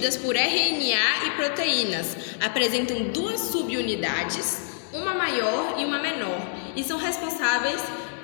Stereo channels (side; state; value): right; silent; digital silence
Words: por RNA e proteínas, apresentam duas subunidades, uma maior e uma menor, e são responsáveis